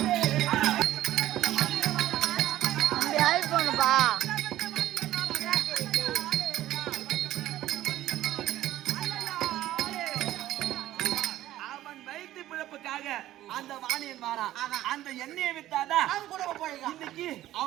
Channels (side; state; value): left; quieter; 14.2 dB